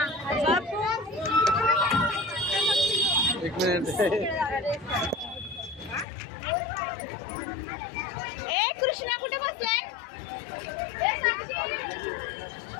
ए कृष्णा कुठे बसलाय?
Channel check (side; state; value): right; drops out; at 6.1 s